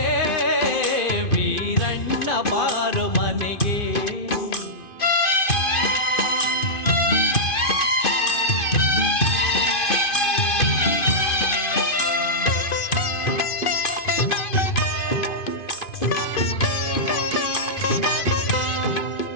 ವೀರಣ್ಣ ಬಾರು ಮನೆಗೆ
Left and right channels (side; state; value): right; late; 2.5 ms